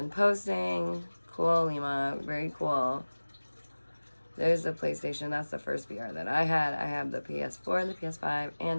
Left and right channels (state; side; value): inverted; both; correlation -1.00